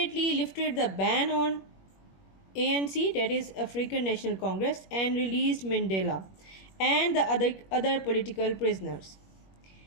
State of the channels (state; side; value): late; right; 21 ms